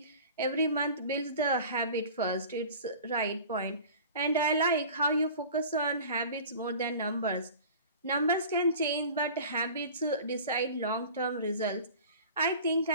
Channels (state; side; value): inverted; both; correlation -0.41